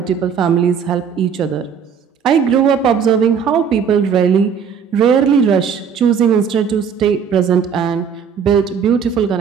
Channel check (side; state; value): left; quieter; 7.0 dB